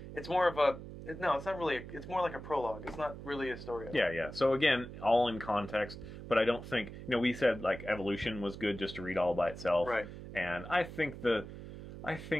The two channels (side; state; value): right; noise; hum, 12 dB below the sound